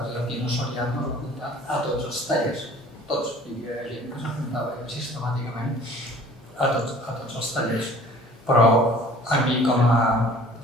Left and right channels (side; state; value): both; normal; correlation 0.49